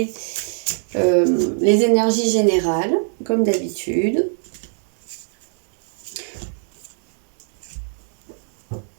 les énergies générales, comme d'habitude.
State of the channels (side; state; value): left; silent; 62 dB below the other